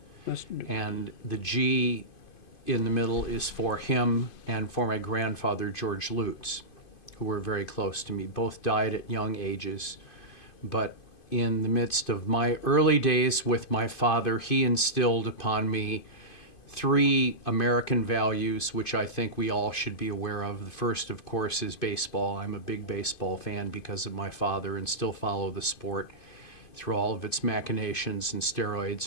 And the G in the middle is for him and for my grandfather, George Lutz, who were very close to me. Both died at young ages. But in the midst of my early days with my father, he instilled upon me three American values, which I think we all should be aware of. The first, of course, is baseball. I'm a big baseball fan because of my father and still follow the sport through all of its machinations and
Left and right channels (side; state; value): right; late; 2.5 ms